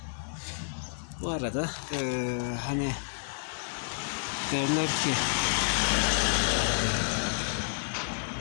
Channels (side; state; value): right; silent; digital silence